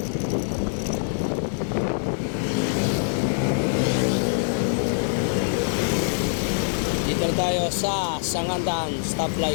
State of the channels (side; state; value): right; silent; 62 dB below the other